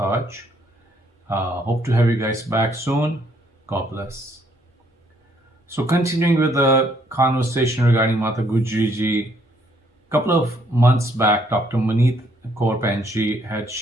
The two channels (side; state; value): both; normal; correlation 0.68